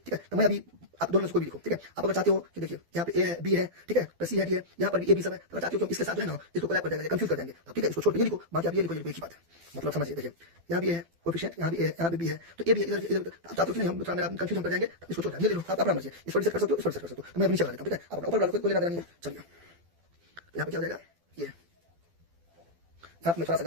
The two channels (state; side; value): late; left; 12 ms